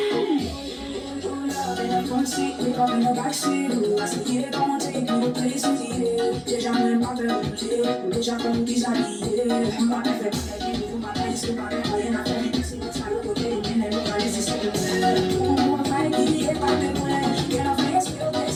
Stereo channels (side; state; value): both; identical; correlation 1.00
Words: in the backseat, I see it, don't take me to places eating. Déjà même pas permuté, déjà comme déshabillé. Ma mère fait pas la vie, ma mère c'est pas rien à faire. C'est le sale côté, mais elle va laisser ça de faire. On va faire qui est pas de loin. Qu'elle a fait, c'est au